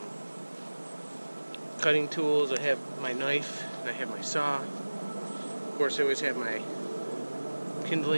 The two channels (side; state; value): both; inverted; correlation -1.00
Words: cutting tools, I have my knife, and I have my saw. Of course, I always have my